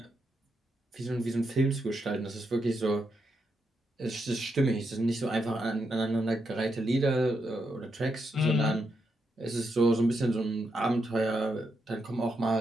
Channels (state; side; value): normal; both; correlation 0.82